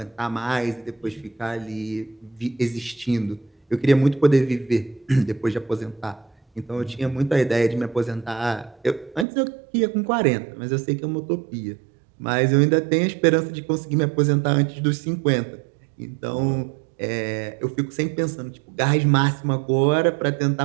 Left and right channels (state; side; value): drops out; left; at 9.2 s